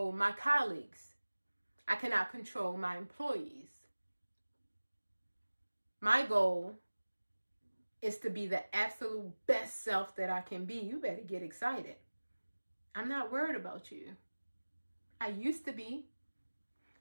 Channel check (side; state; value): both; inverted; correlation -1.00